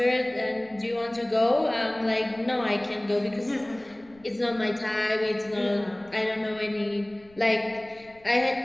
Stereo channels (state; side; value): noise; left; rumble, 28 dB below the sound